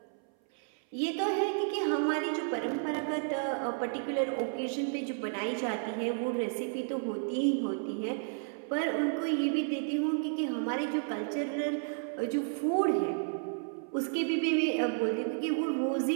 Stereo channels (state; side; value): silent; left; 56 dB below the other